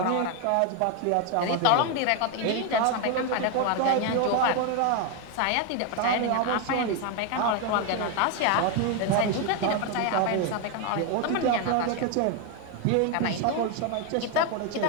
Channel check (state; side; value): different; both; correlation 0.01